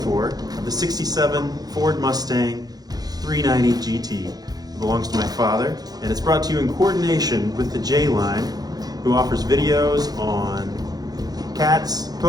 for of the 67 Ford Mustang 390 GT. It belongs to my father, and it's brought to you in coordination with the J-Line, who offers videos on cats,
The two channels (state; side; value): late; left; 0.19 ms